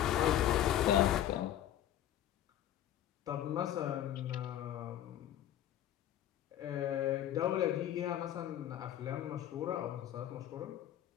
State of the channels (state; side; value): quieter; right; 11.6 dB